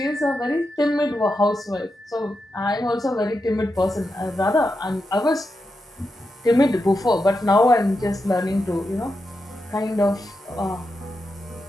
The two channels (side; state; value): both; normal; correlation 0.87